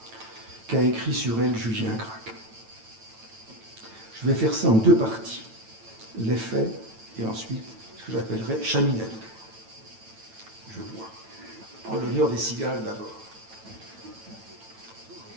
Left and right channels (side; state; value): left; late; 9.0 ms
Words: qu'a écrit sur elle Julien Gracq. Je vais faire ça en 2 parties, les faits et ensuite ce que j'appellerais chaminade. Je vois. En l'honneur des cigales d'abord.